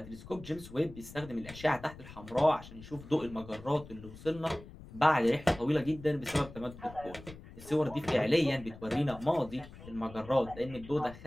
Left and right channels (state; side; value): noise; left; rumble, 16 dB below the sound